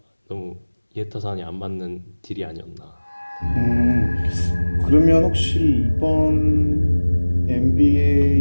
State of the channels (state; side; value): inverted; both; correlation -1.00